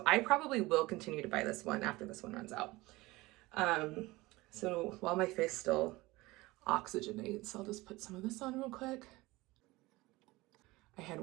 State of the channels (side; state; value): left; quieter; 20.7 dB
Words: I probably will continue to buy this one after this one runs out. So while my face still oxygenates, I'll just put some of this on real quick. I had